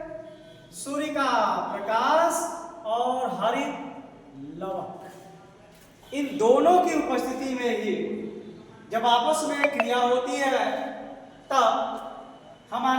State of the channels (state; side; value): identical; both; correlation 1.00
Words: सूर्य का प्रकाश और हरित लवक, इन दोनों की उपस्थिति में ही जब आपस में क्रिया होती है तब